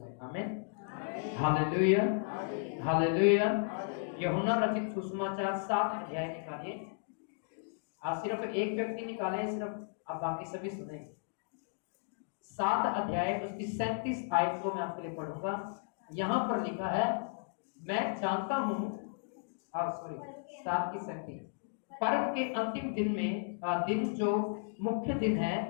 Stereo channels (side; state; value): right; silent; digital silence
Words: आमीन, हालेलुया, हालेलुया। यूहन्ना रचित सुसमाचार 7 अध्याय निकालिए। आज सिर्फ एक व्यक्ति निकाले, सिर्फ अब बाकी सभी सुनेंगे। 7 अध्याय उसकी 37 आयत को मैं आपके लिए पढ़ूंगा। यहां पर लिखा है, मैं जानता हूं, 7:37, पर्व के अंतिम दिन में दिन जो मुख्य दिन है,